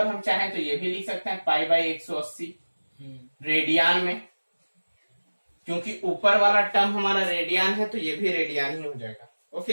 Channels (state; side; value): inverted; both; correlation -1.00